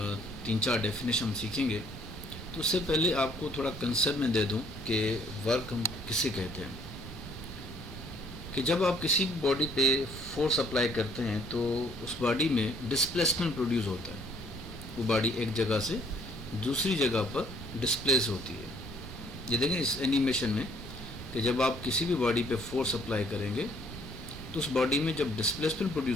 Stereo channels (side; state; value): right; noise; rumble, 12 dB below the sound